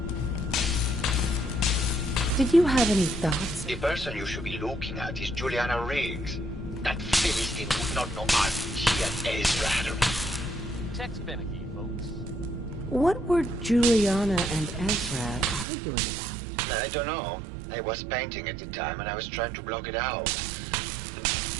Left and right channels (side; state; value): left; drops out; at 15.7 s